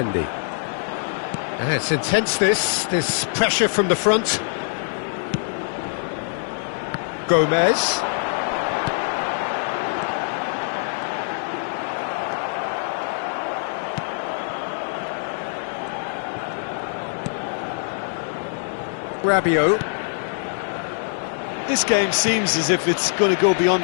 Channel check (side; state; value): right; silent; digital silence